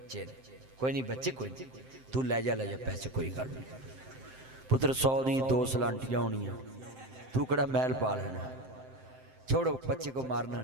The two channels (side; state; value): left; late; 7.7 ms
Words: ने कोई नहीं बच्चे कोई नहीं तू ले जा पैसे कोई गल नहीं। पुत्र 100 दी 2 सलांटियां होनियां तू कड़ा महल पा लेना। छोड़ो बच्चे को मारना